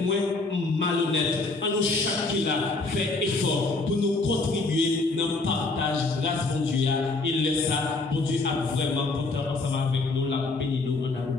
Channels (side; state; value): right; quieter; 3.4 dB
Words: moins malhonnête, à nous chaque là fait effort pour nous contribuer dans le partage grâce bon Dieu. Il laisse ça, bon Dieu a vraiment porté ensemble avec nous, la béni nous en